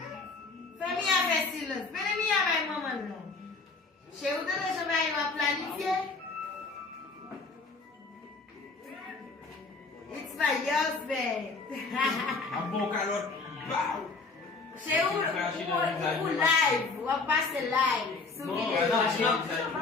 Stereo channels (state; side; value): quieter; right; 4.0 dB